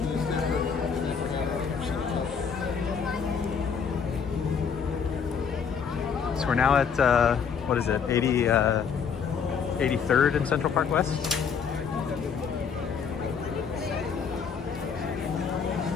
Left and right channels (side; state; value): right; quieter; 6.5 dB